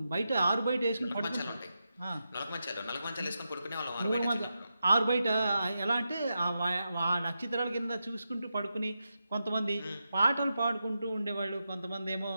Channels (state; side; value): inverted; both; correlation -0.88